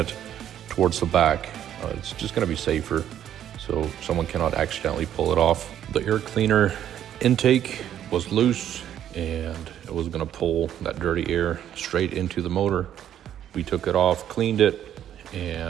towards the back. It's just going to be safer, so someone cannot accidentally pull it off. The air cleaner intake was loose and it was gonna pull that dirty air straight into the motor. We took it off, cleaned it,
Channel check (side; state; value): left; quieter; 10.6 dB